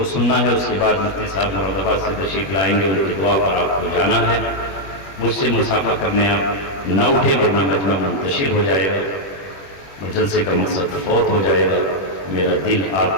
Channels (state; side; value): late; right; 21 ms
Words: سننا ہے، اس کے بعد مفتی صاحب مرحبا سے تشریف لائیں گے، ان کی دعا پر آپ کو جانا ہے۔ مجھ سے مصافحہ کرنے آپ نہ اٹھے ورنہ مجمع منتشر ہو جائے گا، جلسے کا مقصد فوت ہو جائے گا۔ میرا دل